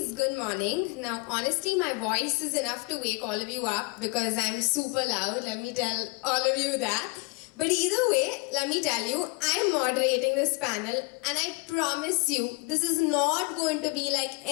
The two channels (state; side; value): quieter; right; 29.4 dB